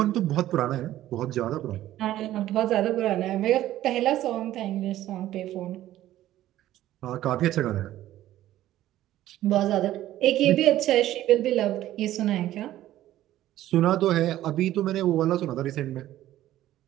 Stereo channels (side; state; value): left; quieter; 13.8 dB